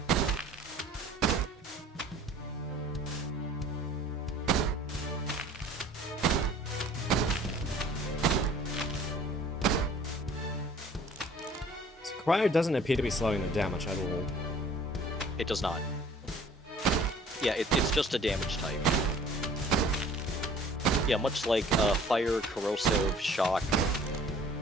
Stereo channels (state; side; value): normal; both; correlation 0.52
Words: So Cryo doesn't appear to be slowing them down much at all. It does not. Yeah, it's just a damage type. Yeah, much like fire, corrosive, shock.